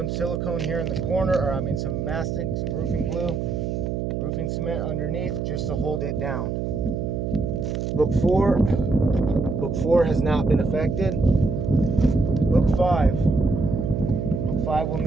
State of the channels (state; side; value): noise; right; hum, 2 dB below the sound